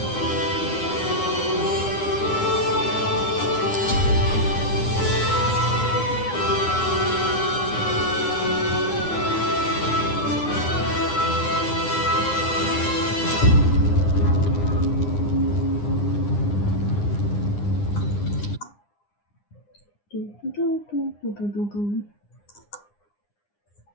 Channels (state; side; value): late; right; 9.8 ms